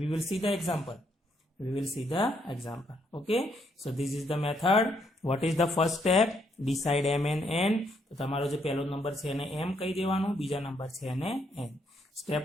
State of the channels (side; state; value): both; normal; correlation 0.73